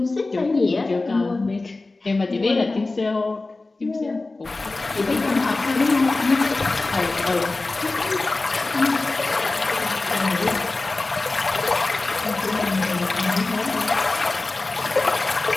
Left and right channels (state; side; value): quieter; right; 3.3 dB